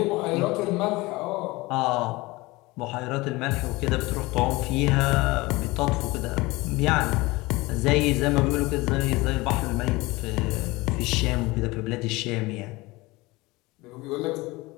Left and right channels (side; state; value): right; quieter; 21.8 dB